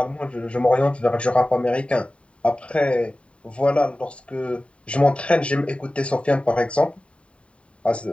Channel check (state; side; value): late; right; 0.061 ms